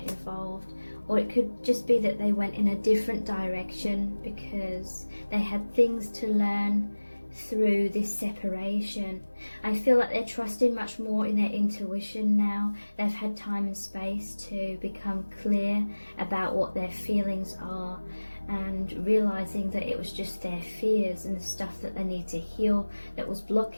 or it could just be that they went in a different direction because they had things to learn through this separation. I feel like they're trusting much more in their intuition now. They've had time and space to become clear about what their feelings are, and realizing that it was just their fears and the stuff that they need to heal that was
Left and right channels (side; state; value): both; inverted; correlation -1.00